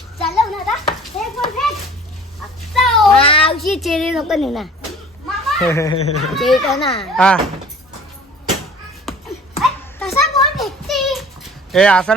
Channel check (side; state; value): both; normal; correlation 0.47